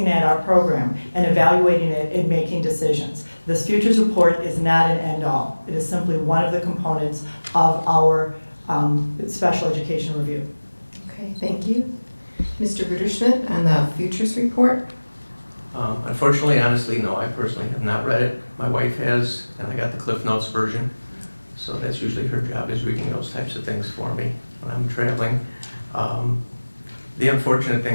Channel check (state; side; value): inverted; both; correlation -1.00